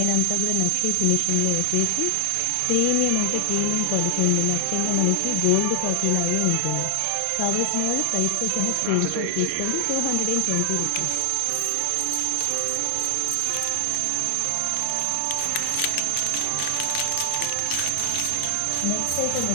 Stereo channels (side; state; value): both; different; correlation 0.00